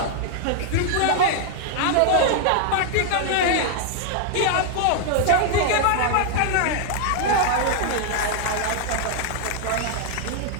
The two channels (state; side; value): different; both; correlation 0.00